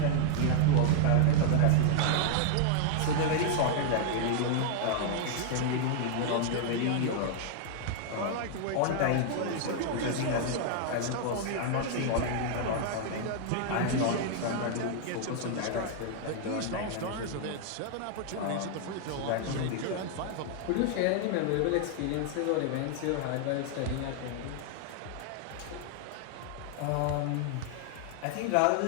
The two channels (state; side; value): different; both; correlation 0.00